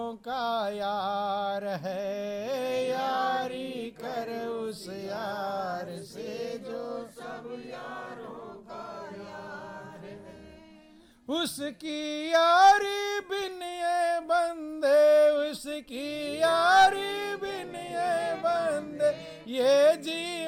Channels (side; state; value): both; identical; correlation 1.00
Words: का यार है, यारी कर उस यार से जो सब उसकी यारी बिन ये बंदे, उसकी यारी बिन ये बंदे, ये